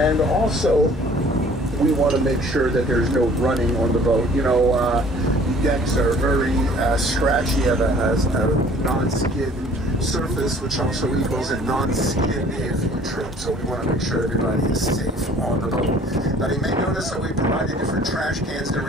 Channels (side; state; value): both; normal; correlation 0.53